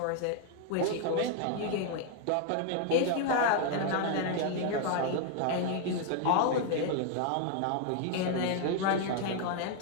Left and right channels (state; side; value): different; both; correlation 0.00